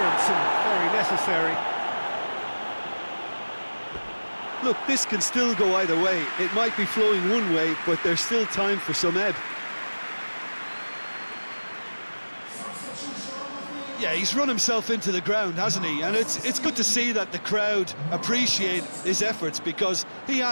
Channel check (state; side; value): inverted; both; correlation -1.00